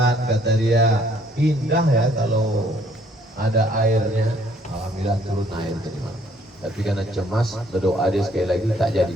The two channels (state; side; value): normal; both; correlation 0.63